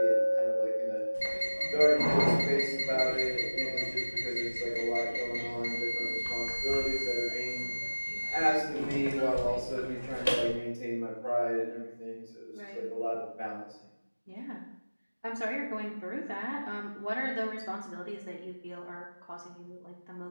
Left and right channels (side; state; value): both; inverted; correlation -1.00